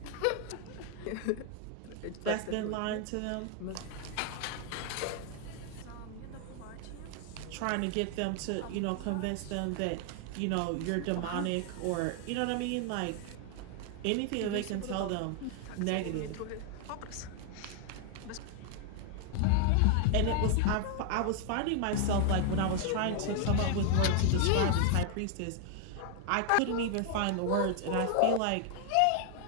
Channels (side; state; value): both; different; correlation 0.00